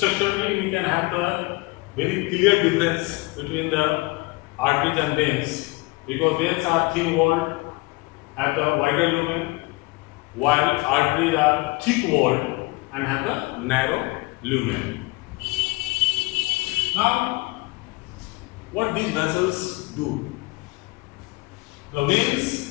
we can have the very clear difference between the arteries and veins, because veins are thin walled, have the wider lumen, while arteries are thick walled and have the narrow lumen. Now, what these vessels do? The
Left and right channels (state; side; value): quieter; right; 23.6 dB